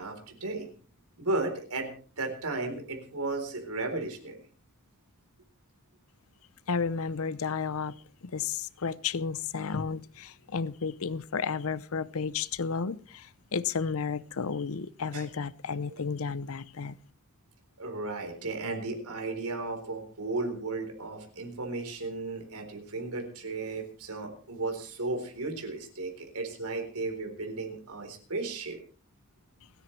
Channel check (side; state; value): both; normal; correlation -0.06